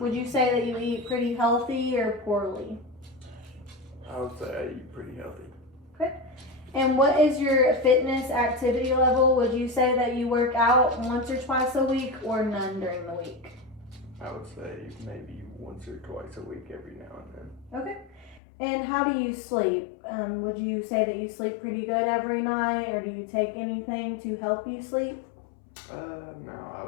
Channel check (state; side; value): drops out; right; at 18.4 s